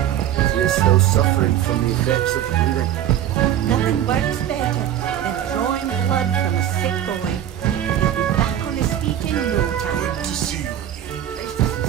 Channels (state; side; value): quieter; left; 11.1 dB